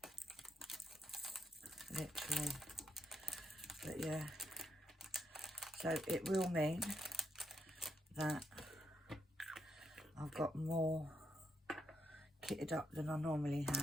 Literally. But yeah, so it will mean that I've got more kitted up than I normally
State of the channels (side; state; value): both; normal; correlation 0.81